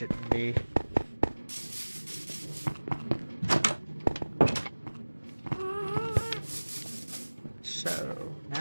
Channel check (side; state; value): both; inverted; correlation -1.00